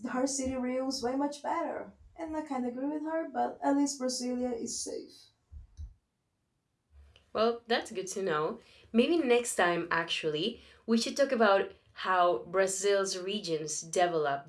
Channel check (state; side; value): identical; both; correlation 1.00